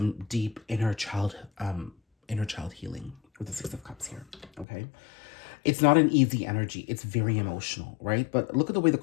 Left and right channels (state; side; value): drops out; right; at 4.7 s